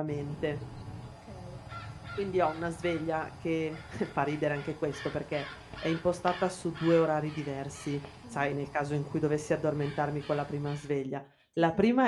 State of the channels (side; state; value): both; identical; correlation 1.00